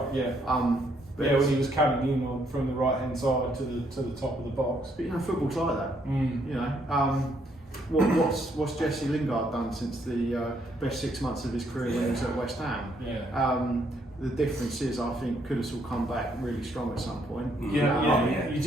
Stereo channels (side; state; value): both; normal; correlation 0.71